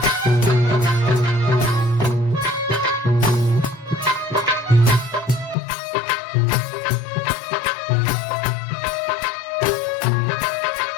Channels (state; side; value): drops out; right; at 5.6 s